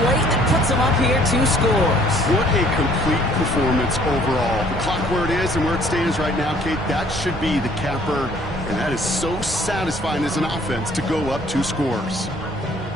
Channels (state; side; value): normal; both; correlation 0.59